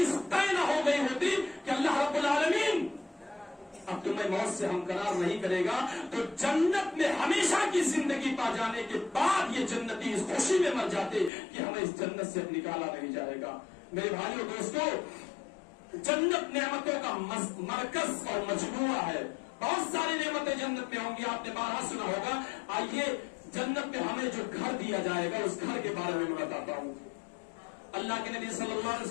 طے نہ ہو گئی ہوتی کہ اللہ رب العالمین اب تمہیں موت سے ہمکنار نہیں کرے گا تو جنت میں ہمیشہ کی زندگی پا جانے کے بعد یہ جنتی اس خوشی میں مر جاتے کہ ہمیں اس جنت سے نکالا نہیں جائے گا. میرے بھائیوں دوستوں, جنت نعمتوں کا مرکز اور مجموعہ ہے. بہت ساری نعمتیں جنت میں ہوں گی, آپ نے بارہا سنا ہوگا. آئیے جنت میں ہمیں جو گھر دیا جائے گا اس گھر کے بارے میں بتاتا ہوں. اللہ کے نبی صلی اللہ علیہ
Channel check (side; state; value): right; drops out; at 11.3 s